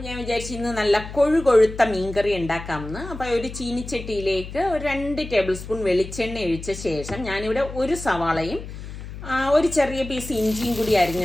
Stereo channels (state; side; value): noise; left; hum, 11 dB below the sound